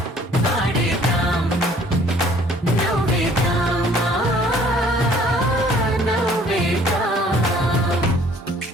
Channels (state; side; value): normal; both; correlation 0.57